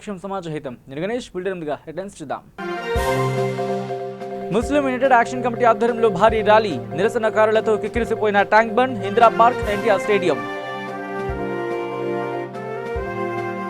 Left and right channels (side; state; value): both; identical; correlation 1.00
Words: సమాజహితం. నేను Ganesh. బుల్టెన్గా headlines చూద్దాం. ముస్లిం యునైటెడ్ యాక్షన్ కమిటీ ఆధ్వర్యంలో భారీ ర్యాలీ, నిరసనకారులతో కిక్కిరిసిపోయిన tank bund, Indira park, NTR stadium.